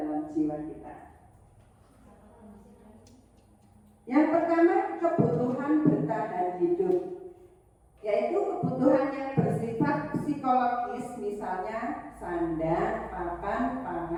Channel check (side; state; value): both; identical; correlation 1.00